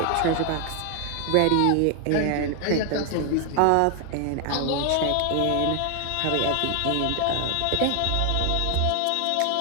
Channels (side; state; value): both; different; correlation 0.00